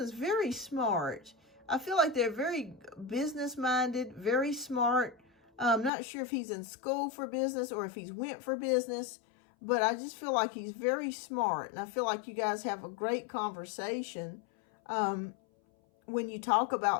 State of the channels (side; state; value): right; drops out; at 5.9 s